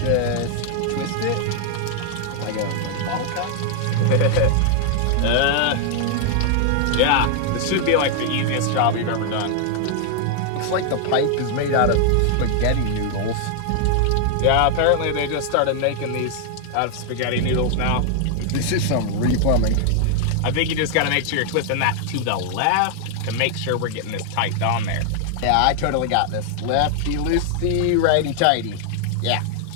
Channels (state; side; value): different; both; correlation 0.00